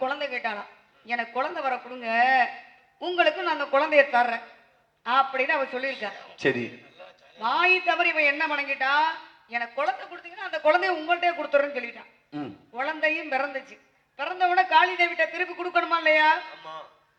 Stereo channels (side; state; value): both; identical; correlation 1.00